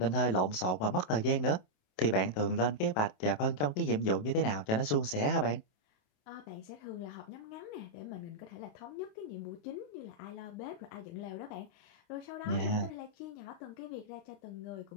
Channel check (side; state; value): right; late; 27 ms